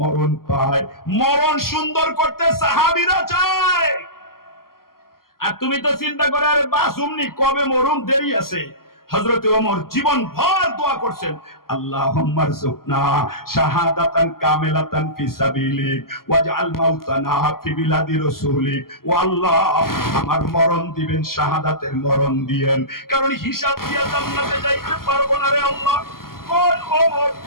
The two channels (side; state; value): right; late; 0.92 ms